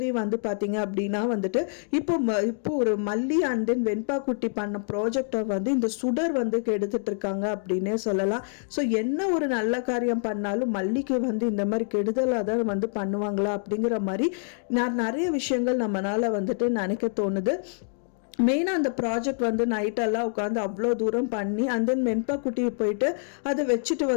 வந்து பார்த்தீங்க அப்படின்னா வந்துட்டு இப்போ ஒரு மல்லி அண்ட் தென் வெண்பா குட்டி பண்ண ப்ராஜெக்டை வந்து இந்த சுடர் வந்து கெடுத்துட்டு இருக்காங்க அப்படின்னே சொல்லலாம். ஸோ என்ன ஒரு நல்ல காரியம் பண்ணாலும் மல்லிக்கு வந்து இந்த மாதிரி கெடுதலாக தான் வந்து பண்ணுவாங்களா அப்படிங்கிற மாதிரி நிறைய விஷயங்கள் நம்மளால வந்துட்டு நினைக்க தோணுது. மெயினாக அந்த ப்ராஜெக்ட் வந்து நைட்டெல்லாம் உட்காந்து அவ்வளோ தூரம் பண்ணி அண்ட் தென் வெண்பா குட்டியை போயிட்டு அதை வச்சுட்டு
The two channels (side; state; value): right; silent; digital silence